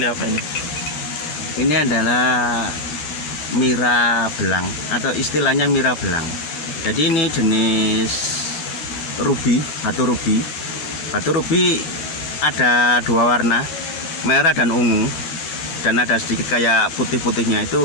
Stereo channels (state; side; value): late; right; 13 ms